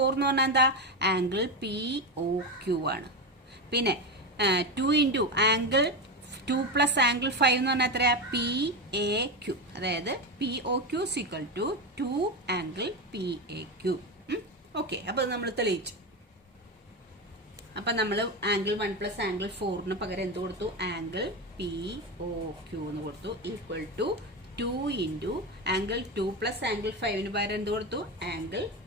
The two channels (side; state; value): both; normal; correlation 0.17